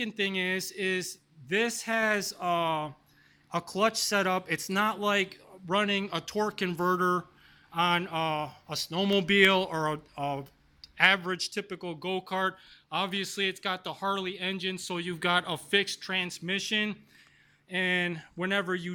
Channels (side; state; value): both; identical; correlation 1.00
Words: thing is this has a clutch setup. It's not like running a torque converter on a snowmobile or a average typical go-kart. Obviously, it's got the Harley engine, so you've got a fixed transmission. And whenever you